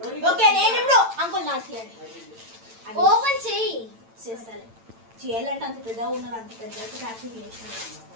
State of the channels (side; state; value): left; late; 8.9 ms